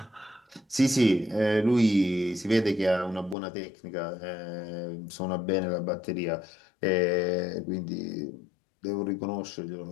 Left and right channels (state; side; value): drops out; right; at 3.4 s